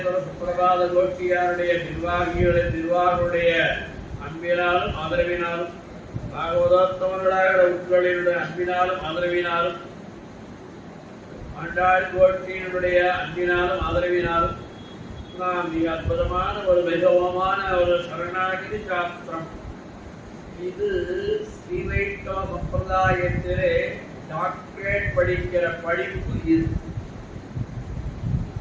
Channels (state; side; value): identical; both; correlation 1.00